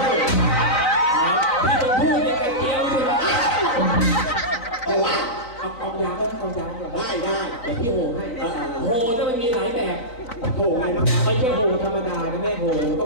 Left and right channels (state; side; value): late; right; 4.0 ms